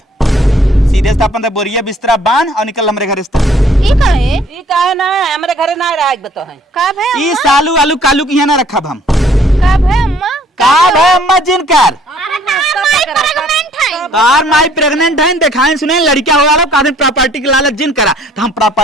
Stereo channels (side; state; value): both; normal; correlation 0.59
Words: सीधे से अपन बोरिया बिस्तरा बांध और निकल हमरे घर से ई काहे ई काहे ना हमरे घरे ना रह बतो है का भाई ई सालू आलू कालू की यहाँ ना रखब हम का भाई अम्मा का भाई अम्मा जिनकर अरे माई प्रेग्नेंट है तार माई प्रेग्नेंट है दिखाएं सुने लड़का हो वाला कादन प्रॉपर्टी के लालच जिन करा तो हम